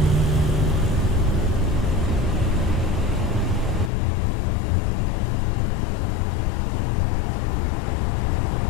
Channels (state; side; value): drops out; right; at 3.9 s